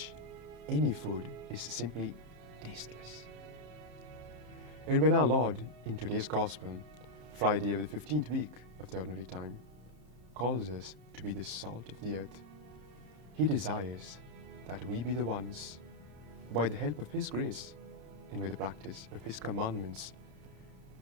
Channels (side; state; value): left; late; 27 ms